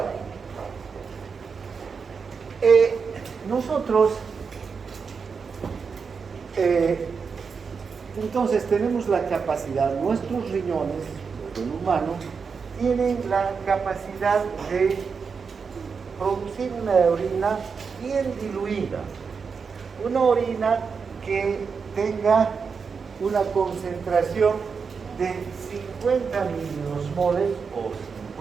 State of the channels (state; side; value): quieter; left; 5.6 dB